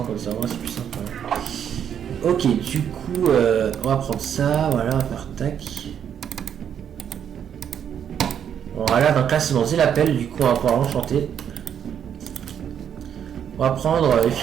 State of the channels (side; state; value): left; quieter; 8.7 dB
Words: comme ça, c'est plus simple. Ok, du coup, on va prendre ça, voilà, on va faire tac. Voilà, donc là c'est bon, j'ai la pelle, du coup on va pouvoir l'enchanter. On va prendre